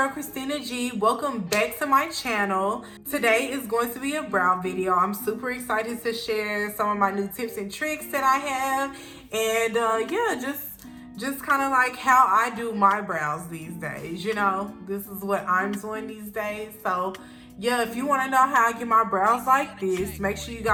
Christina G. Welcome back to my channel. Today is going to be a brow video. I'm super excited to share some of my new tips and tricks that I have, and yeah, just kind of like how I do my brows these days. You know, this is what I'm doing these days. So yeah, if you want to know how I get my brows like this, make sure you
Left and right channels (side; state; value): both; identical; correlation 1.00